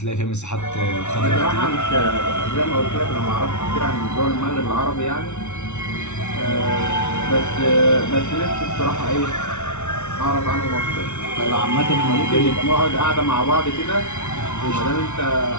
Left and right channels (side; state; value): right; late; 0.82 ms